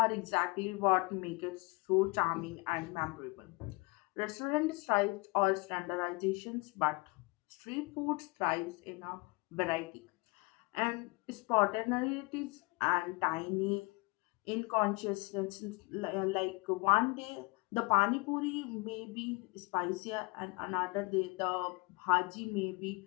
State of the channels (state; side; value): quieter; right; 26.8 dB